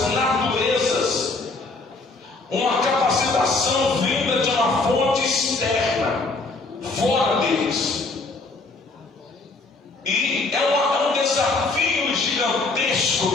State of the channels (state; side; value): quieter; right; 3.6 dB